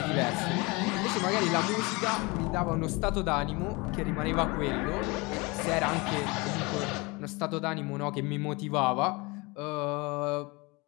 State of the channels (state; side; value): quieter; right; 26.0 dB